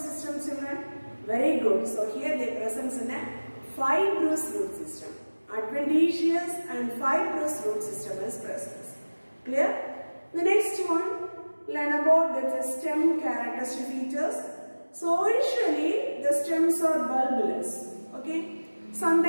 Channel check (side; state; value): both; inverted; correlation -1.00